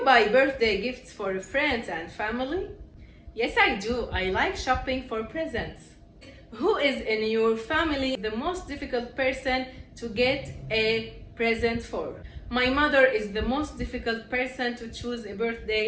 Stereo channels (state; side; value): identical; both; correlation 1.00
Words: buy birthday gifts for friends and family? Yes, I do. I like shopping for presents. Who is in your family the most difficult person to get a present for? My mother is the most difficult person to choose a